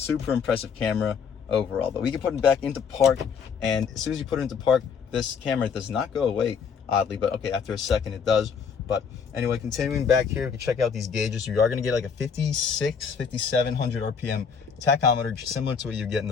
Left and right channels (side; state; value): right; quieter; 6.3 dB